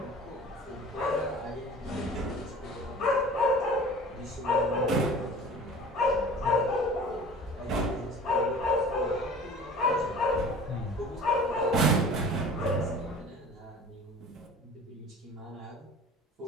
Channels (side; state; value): both; normal; correlation 0.43